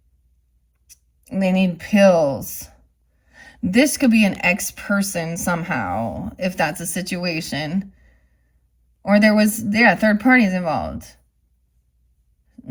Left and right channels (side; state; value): both; identical; correlation 1.00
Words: They need pills. This could be an ex person somehow, if that's a situation. Or there was, yeah, third parties involved.